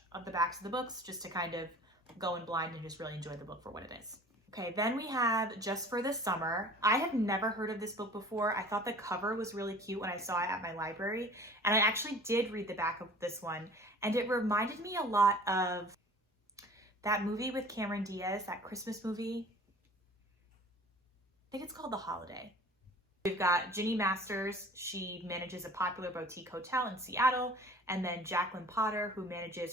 of the backs of the books, just to kind of go in blind and just really enjoy the book for what it is. Okay, then we have Just for the Summer. I have never heard of this book before. I thought the cover was really cute when I saw it at my library, and I actually did read the back of this one, and it reminded me a lot of that movie with Cameron Diaz, that Christmas movie. I think it's called The Holiday. We've got Ginny Masters. She manages a popular boutique hotel in Seattle, and then Jacqueline Potter, who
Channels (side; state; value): both; normal; correlation 0.46